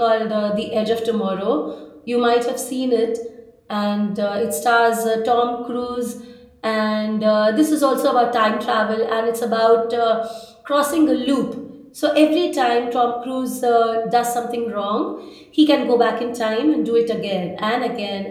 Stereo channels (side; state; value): both; identical; correlation 1.00